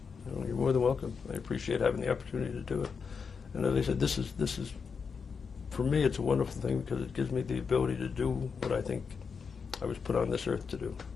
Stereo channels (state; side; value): quieter; right; 5.7 dB